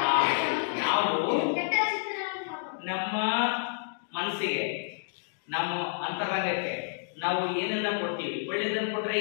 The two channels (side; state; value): right; silent; digital silence